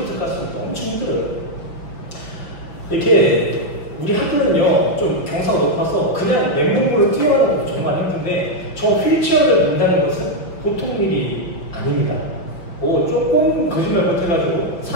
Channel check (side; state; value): right; late; 5.6 ms